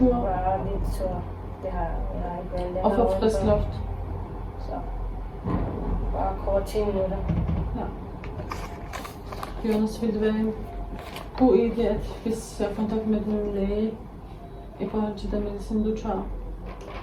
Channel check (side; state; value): both; identical; correlation 1.00